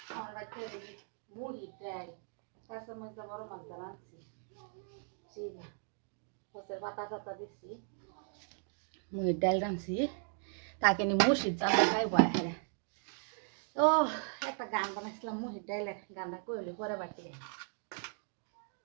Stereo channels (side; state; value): left; silent; 53 dB below the other